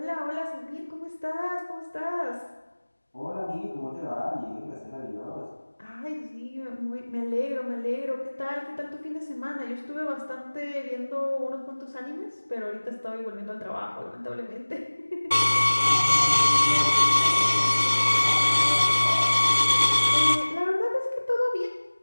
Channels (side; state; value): both; inverted; correlation -1.00